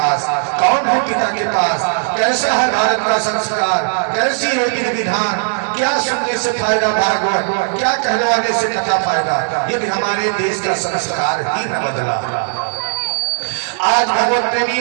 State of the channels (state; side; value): silent; left; 68 dB below the other